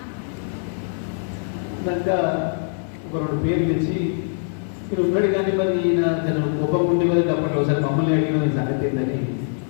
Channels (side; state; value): right; silent; 64 dB below the other